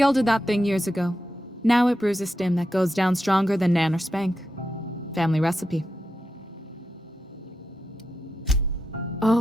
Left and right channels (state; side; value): normal; both; correlation 0.87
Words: that thing years ago. Now it brews a stim that goes down stronger than Nan or Spank. Family recipe.